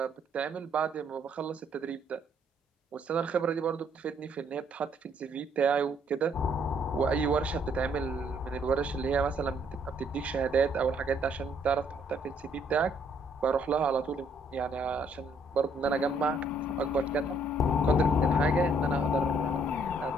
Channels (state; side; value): normal; both; correlation 0.67